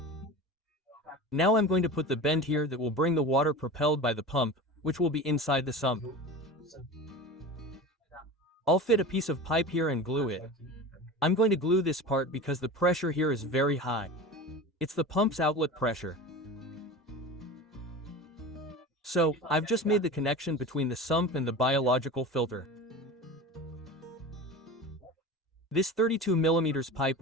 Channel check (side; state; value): both; normal; correlation 0.32